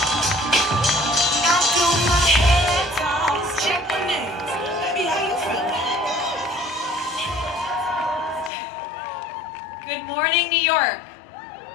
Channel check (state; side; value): drops out; right; at 8.5 s